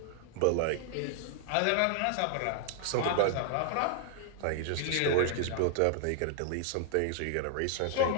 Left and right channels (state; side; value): different; both; correlation 0.00